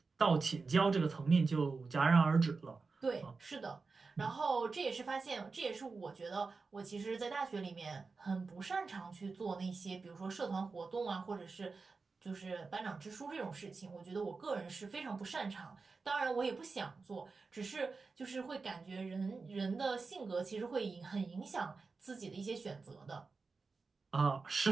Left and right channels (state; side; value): quieter; left; 4.3 dB